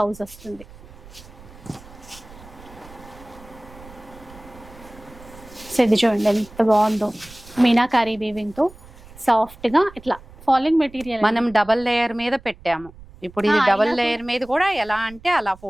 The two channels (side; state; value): right; noise; rumble, 20 dB below the sound